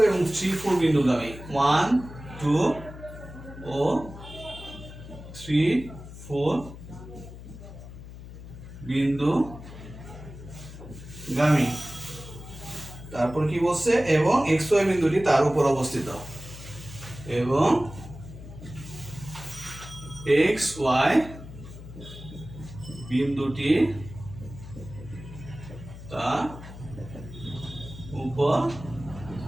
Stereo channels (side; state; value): left; noise; hum, 14 dB below the sound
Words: এবং 3 4 বিন্দুগামী, 1 2 ও 3 4 বিন্দুগামী। তারপর কি বলছে, এবং xy বিন্দুটি তার উপর অবস্থিত, এবং xy বিন্দুটি তার উপর